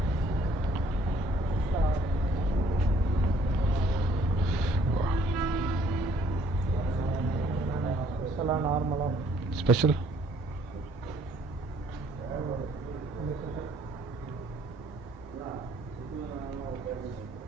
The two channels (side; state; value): both; normal; correlation 0.62